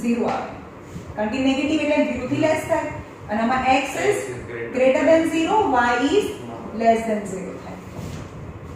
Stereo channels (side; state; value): both; identical; correlation 1.00